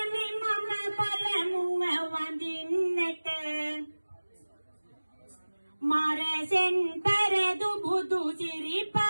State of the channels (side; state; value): both; inverted; correlation -1.00